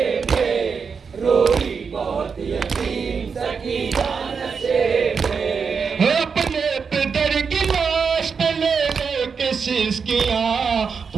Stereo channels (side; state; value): left; quieter; 5.8 dB